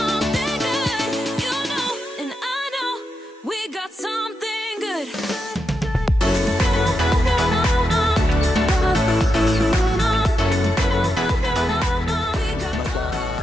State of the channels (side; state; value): both; normal; correlation 0.86